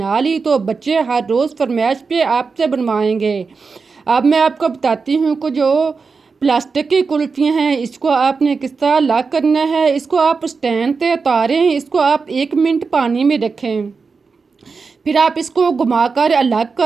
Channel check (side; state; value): left; quieter; 4.8 dB